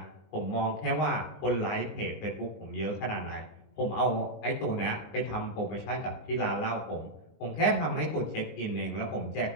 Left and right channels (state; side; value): late; right; 19 ms